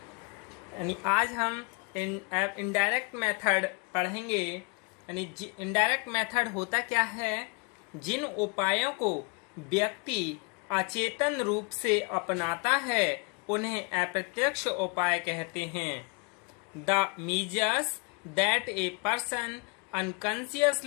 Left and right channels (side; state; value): right; quieter; 31.3 dB